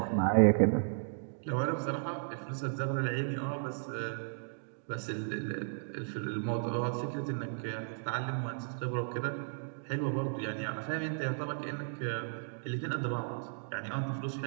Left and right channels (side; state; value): left; silent; digital silence